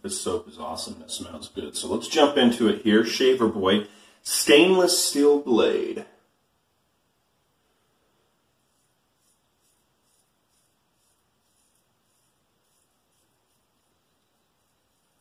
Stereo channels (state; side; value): identical; both; correlation 1.00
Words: This soap is awesome, it smells good. So let's jump into it here. Shaver Boy Stainless Steel Blade.